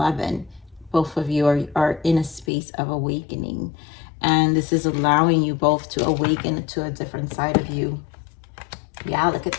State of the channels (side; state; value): right; drops out; at 2.5 s